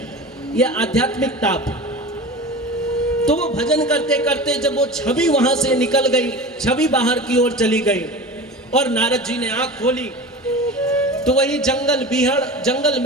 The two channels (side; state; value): both; normal; correlation 0.33